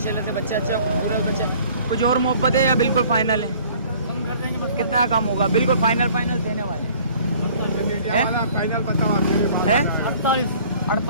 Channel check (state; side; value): inverted; both; correlation -0.53